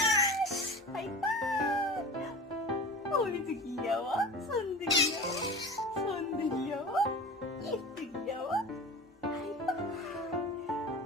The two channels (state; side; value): normal; both; correlation 0.35